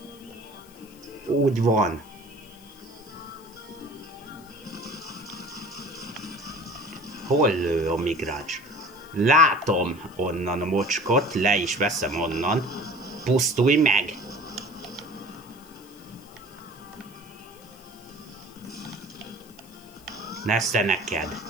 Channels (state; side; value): noise; left; hiss, 24 dB below the sound